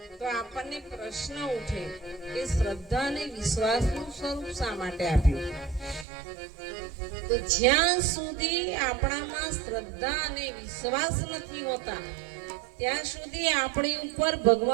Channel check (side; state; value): left; drops out; at 6.1 s